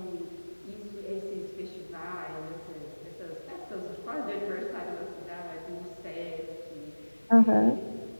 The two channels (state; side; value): inverted; both; correlation -1.00